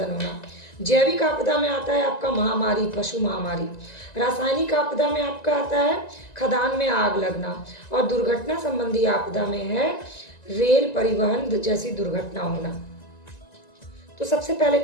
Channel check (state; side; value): late; right; 1.9 ms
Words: होना। जैविक आपदा में आता है आपका महामारी, पशु महामारी। रासायनिक आपदा में आपका आता है खदान में आग लगना। और दुर्घटना संबंधी आपदा में है रेल परिवहन जैसी दुर्घटना होना। तो सबसे पहले